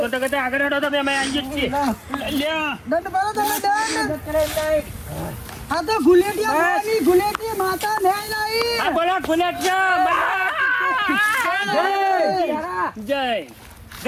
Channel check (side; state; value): both; identical; correlation 1.00